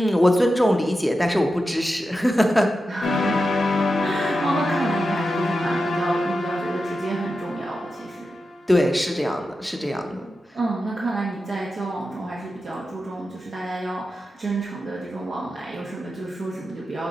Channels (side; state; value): both; normal; correlation 0.90